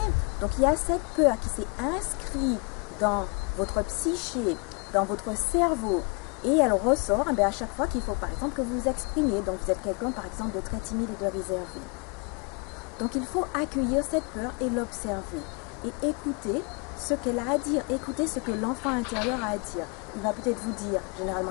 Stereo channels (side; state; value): right; quieter; 33.0 dB